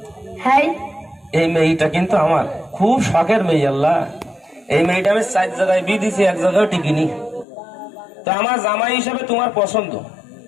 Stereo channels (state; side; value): drops out; right; at 7.5 s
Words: হ্যাঁ। এই মেয়েটা কিন্তু আমার খুব শখের মেয়ে। আল্লাহ, এই মেয়েটা আমি 4 জায়গায় বিয়ে দিছি, এক জায়গায় টিকিনি। তো আমার জামাই হিসাবে তোমার পছন্দ।